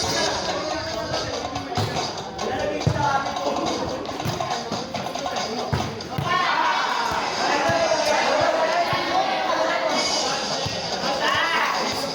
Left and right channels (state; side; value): identical; both; correlation 1.00